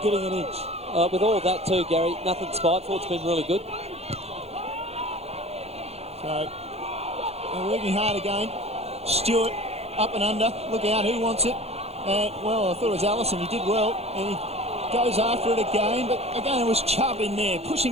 getting an inch. With all of that too, Gary, nothing spiteful. It's been really good. So, they're working hard again. Stewart, up and under. Look out, who wants it? Well, I thought it was Allison. He did well, and he goes after it again, but again it was Chubb in there,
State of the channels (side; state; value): left; late; 0.30 ms